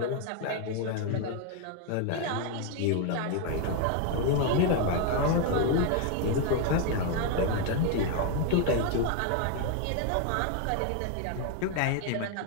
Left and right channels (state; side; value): different; both; correlation 0.01